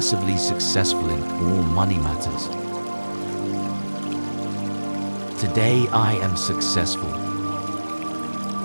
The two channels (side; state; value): both; inverted; correlation -1.00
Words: successful in all money matters. Today I am successful.